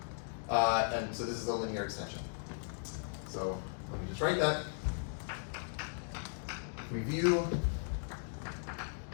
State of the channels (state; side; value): silent; right; digital silence